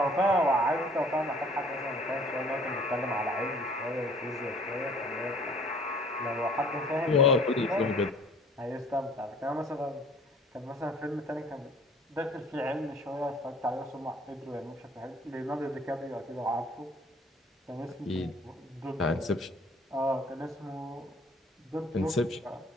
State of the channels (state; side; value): normal; both; correlation 0.54